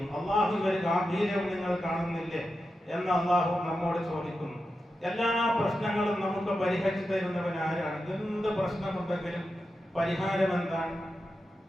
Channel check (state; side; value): normal; both; correlation 0.90